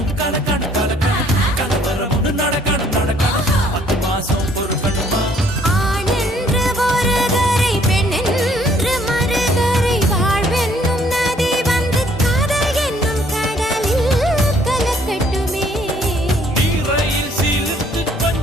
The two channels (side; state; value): both; normal; correlation 0.62